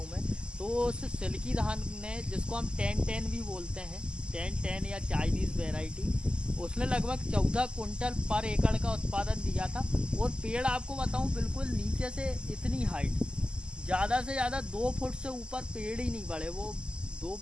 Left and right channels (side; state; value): left; late; 0.048 ms